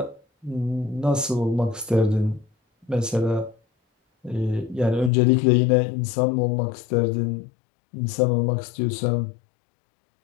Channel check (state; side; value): drops out; right; at 5.1 s